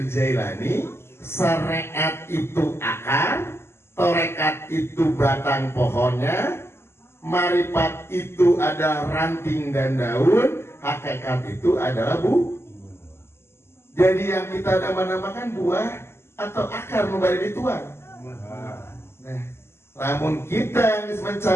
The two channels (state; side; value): late; right; 0.12 ms